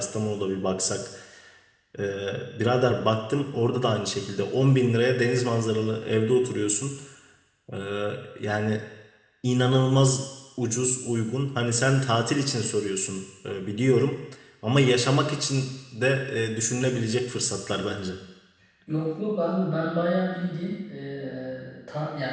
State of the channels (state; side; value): identical; both; correlation 1.00